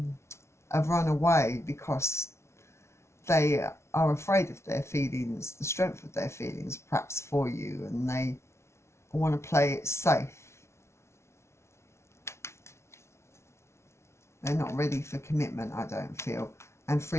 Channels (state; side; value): late; right; 0.13 ms